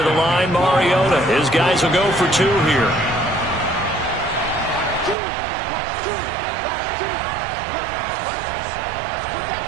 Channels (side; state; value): left; drops out; at 5.2 s